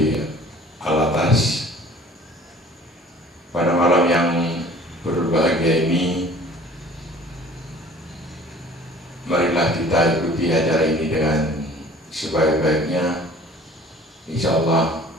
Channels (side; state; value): both; normal; correlation 0.49